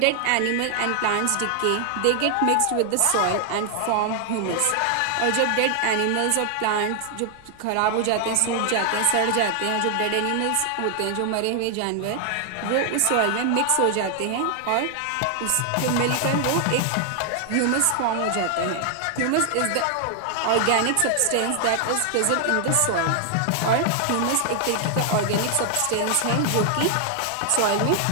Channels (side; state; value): both; different; correlation 0.00